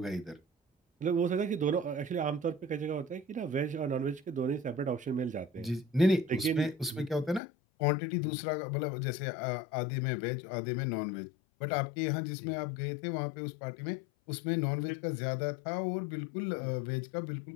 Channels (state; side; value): drops out; right; at 7.4 s